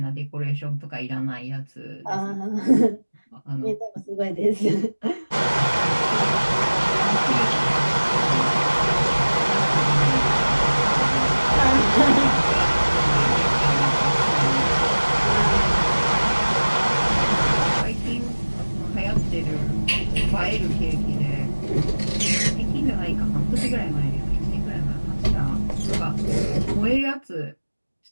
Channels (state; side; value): inverted; both; correlation -1.00